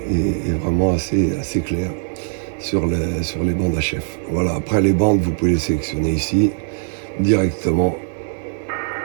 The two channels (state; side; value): silent; left; digital silence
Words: est vraiment assez claire sur les bandes HF. Voilà, après les bandes, vous pouvez les sélectionner ici, directement